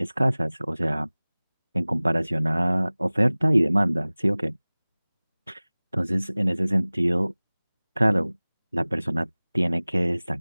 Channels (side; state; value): both; inverted; correlation -1.00